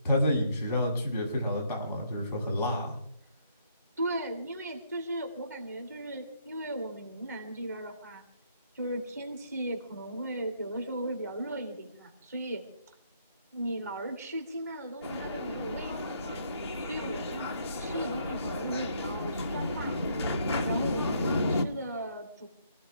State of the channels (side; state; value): both; inverted; correlation -0.69